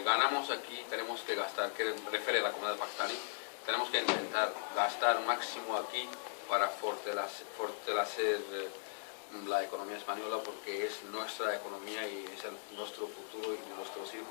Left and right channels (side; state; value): right; silent; digital silence